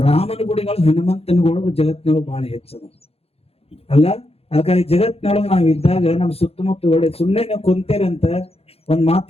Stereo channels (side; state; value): right; late; 0.29 ms